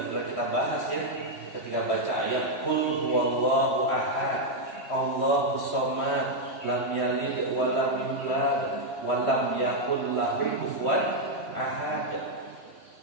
kita bahas ya, ketika baca ayat Qul huwallahu ahad, Allahus samad, lam yalid wa lam yulad wa lam yakul lahu kufuwan ahad.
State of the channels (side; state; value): right; late; 3.1 ms